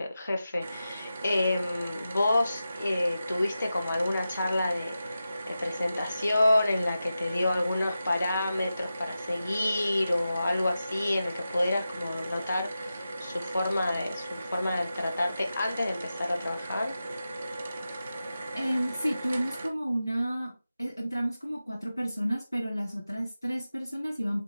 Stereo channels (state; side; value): inverted; both; correlation -0.92